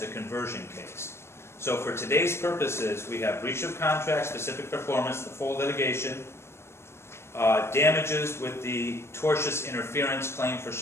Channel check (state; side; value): late; right; 0.12 ms